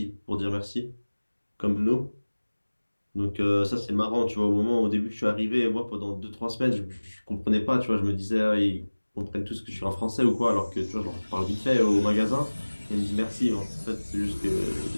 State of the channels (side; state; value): both; inverted; correlation -1.00